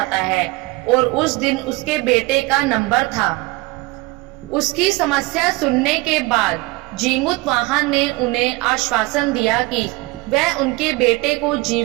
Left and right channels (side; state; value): left; quieter; 22.1 dB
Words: है और उस दिन उसके बेटे का नंबर था। उसकी समस्या सुनने के बाद जीमूत वाहन ने उन्हें आश्वासन दिया कि वह उनके बेटे को